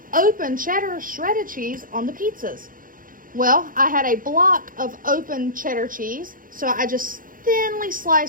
open cheddar shredded cheese on the pizzas. Well, I had a block of open cheddar cheese, so I just thinly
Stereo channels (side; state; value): left; late; 0.40 ms